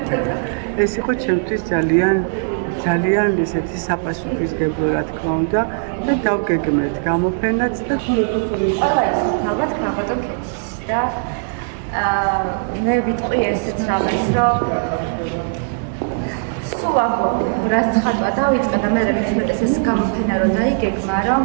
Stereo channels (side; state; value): left; silent; digital silence